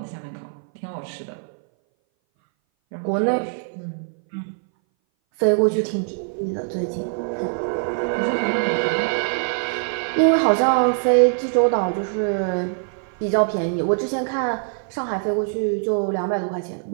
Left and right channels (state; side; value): silent; left; 59 dB below the other